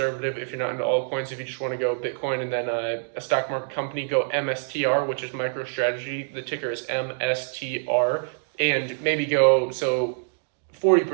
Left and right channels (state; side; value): silent; left; digital silence